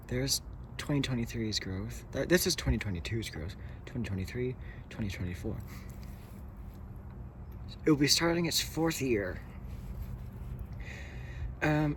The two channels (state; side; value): identical; both; correlation 1.00